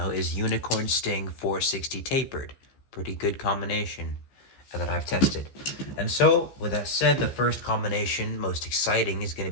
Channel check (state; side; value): late; right; 15 ms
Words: is Unicorn Sting 460 Tapered. Pretty good combination that I've tested. And so, with that said, the first combination, most exciting, is going to